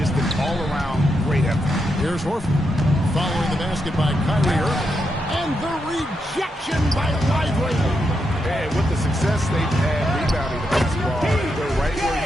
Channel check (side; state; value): both; normal; correlation 0.83